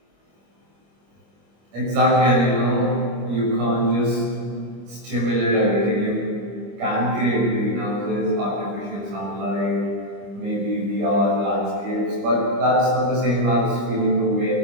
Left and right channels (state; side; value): late; left; 25 ms